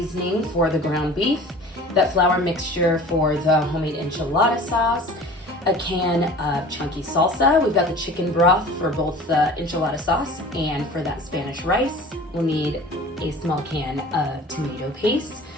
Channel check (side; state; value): both; normal; correlation 0.42